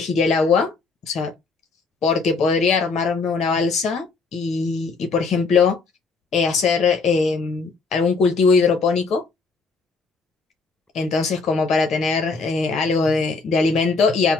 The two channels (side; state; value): right; quieter; 4.3 dB